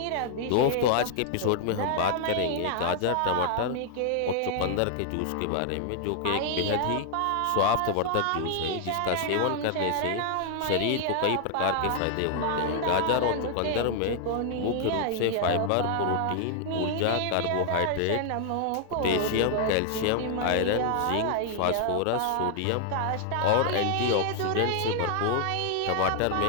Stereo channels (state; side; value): different; both; correlation 0.00